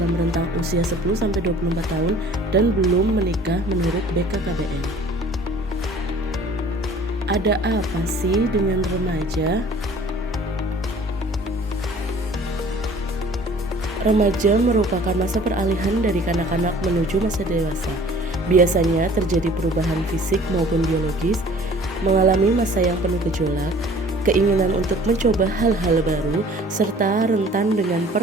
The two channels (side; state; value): both; normal; correlation 0.50